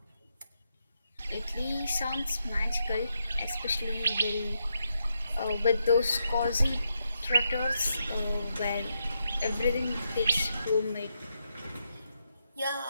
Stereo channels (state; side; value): inverted; both; correlation -0.82